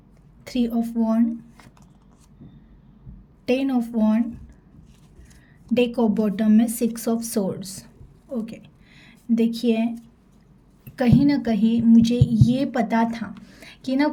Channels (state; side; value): identical; both; correlation 1.00